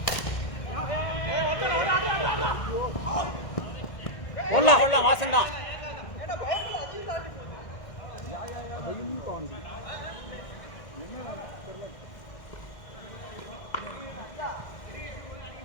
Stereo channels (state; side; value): late; right; 1.6 ms